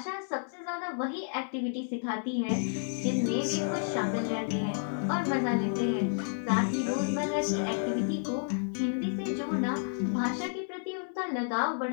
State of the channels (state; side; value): silent; right; 57 dB below the other